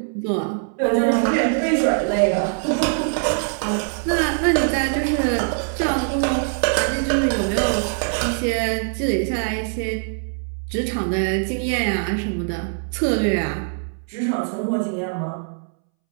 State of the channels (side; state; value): left; silent; 64 dB below the other